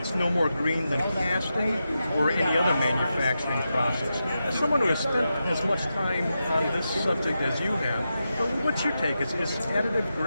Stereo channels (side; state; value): both; inverted; correlation -0.89